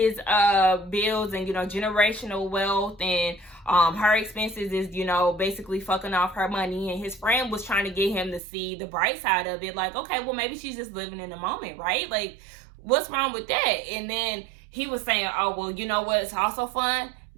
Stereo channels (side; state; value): left; drops out; at 8.4 s